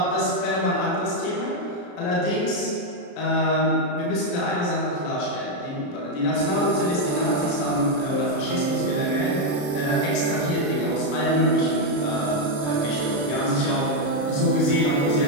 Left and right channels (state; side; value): late; right; 34 ms